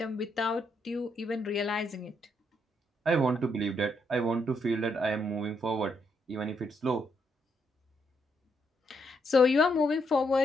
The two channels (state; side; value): normal; both; correlation 0.76